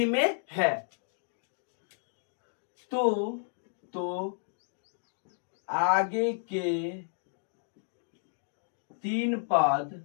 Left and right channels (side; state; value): right; silent; digital silence